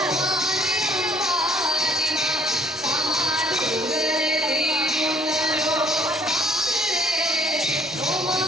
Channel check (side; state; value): right; noise; hum, 28 dB below the sound